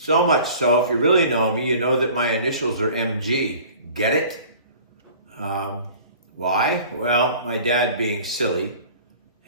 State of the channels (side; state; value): both; inverted; correlation -0.45